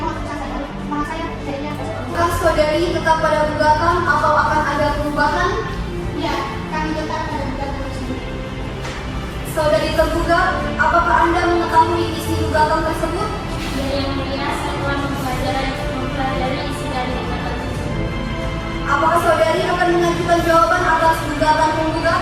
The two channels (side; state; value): both; identical; correlation 1.00